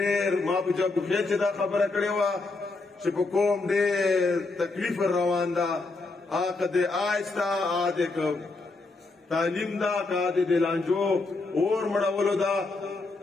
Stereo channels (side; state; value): right; quieter; 3.5 dB